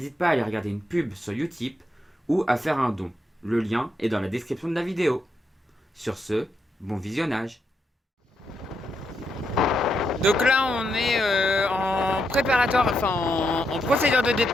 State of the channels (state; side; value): normal; both; correlation 0.81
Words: pas à aller regarder une pub sur Utip ou à faire un don. Le lien est dans la description de la vidéo. Sur ce, bon visionnage. Donc là on est en préparatoire, en procédure de